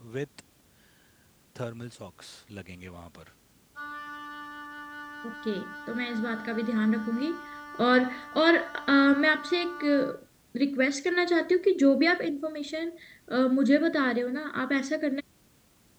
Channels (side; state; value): both; identical; correlation 1.00